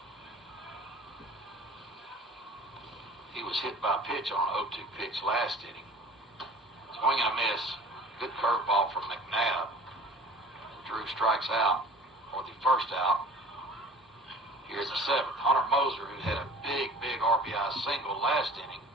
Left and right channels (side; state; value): both; normal; correlation 0.44